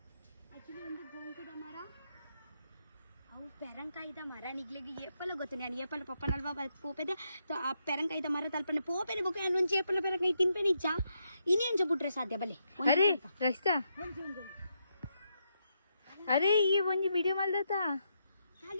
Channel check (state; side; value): inverted; both; correlation -0.81